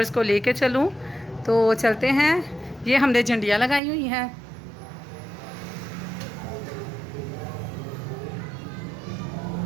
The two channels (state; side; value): drops out; left; at 3.8 s